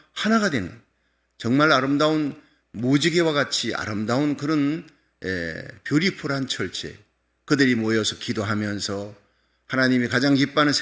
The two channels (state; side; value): identical; both; correlation 1.00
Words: 하나가 되는 정말 아름다운 무지개와 같이 아름다운 그런 뷰티풀한 철제. 그들이 모여서 기도하면서 하나님이 가장 기뻐하는